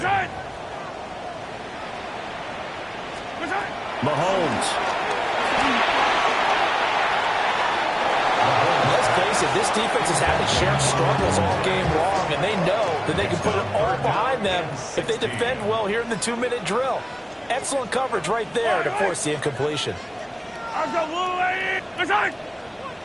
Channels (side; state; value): both; identical; correlation 1.00